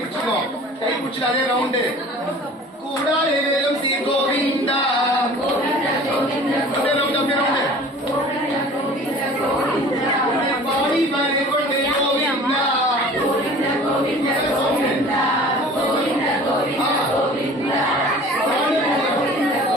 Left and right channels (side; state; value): both; normal; correlation 0.45